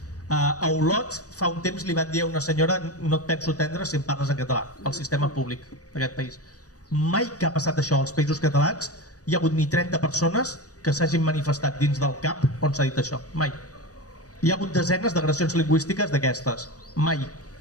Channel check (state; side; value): late; right; 0.67 ms